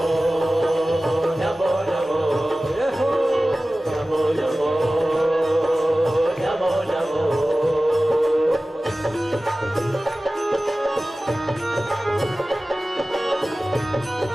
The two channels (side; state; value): both; normal; correlation 0.96